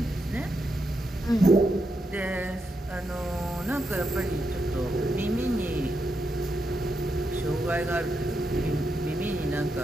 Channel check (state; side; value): normal; both; correlation 0.84